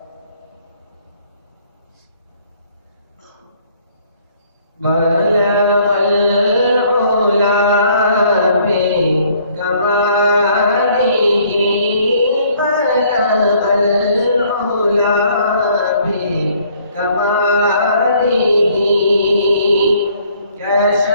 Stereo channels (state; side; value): inverted; both; correlation -0.62